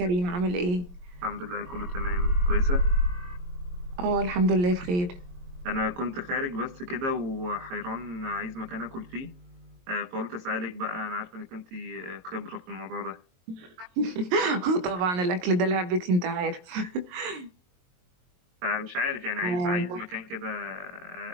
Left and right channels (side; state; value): left; late; 22 ms